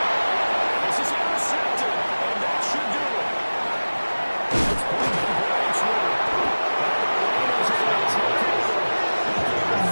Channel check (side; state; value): both; inverted; correlation -1.00